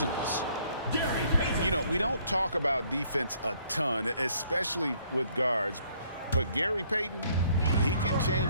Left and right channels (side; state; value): both; inverted; correlation -0.64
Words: You know, we don't talk about defense a ton, especially with guards. But Gary Payton, he can